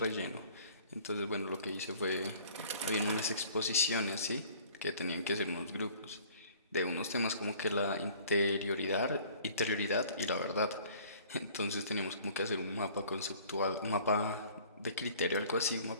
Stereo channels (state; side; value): inverted; both; correlation -0.52